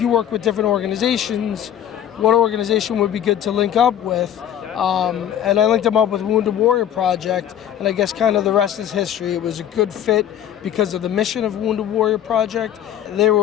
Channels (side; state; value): right; quieter; 10.3 dB